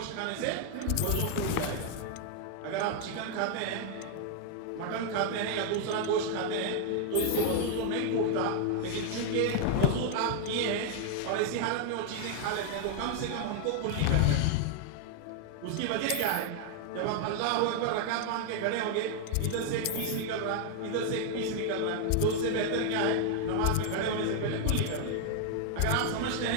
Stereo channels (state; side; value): different; both; correlation 0.00